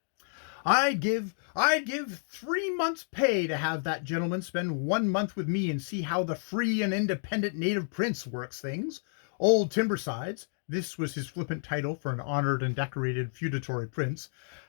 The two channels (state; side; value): silent; right; digital silence